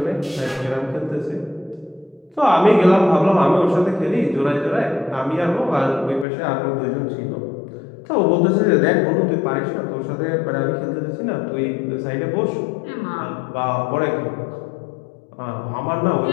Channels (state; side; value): drops out; right; at 6.2 s